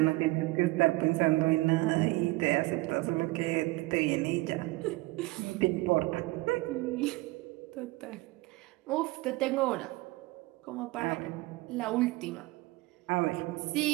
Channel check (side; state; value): left; quieter; 21.1 dB